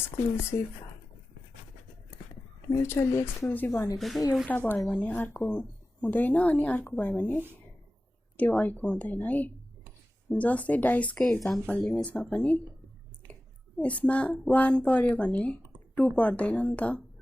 भनेको चाहिँ एउटा भयो भने अर्को हुँदैन अनि अर्को भयो भने त्यो अर्को हुँदैन है। जस्तै डाइसकै एक्जाम्पल लिउँ। यसमा पनि यसमा 1 पर्यो भने 2 पर्दैन नि त,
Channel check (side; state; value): both; normal; correlation 0.95